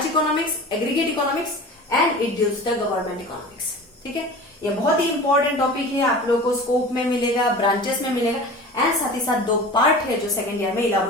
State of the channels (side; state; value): both; normal; correlation 0.37